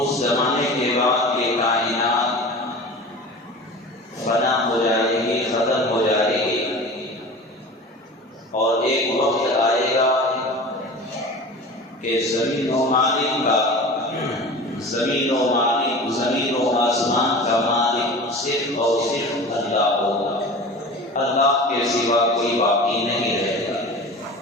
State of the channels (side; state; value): both; normal; correlation 0.36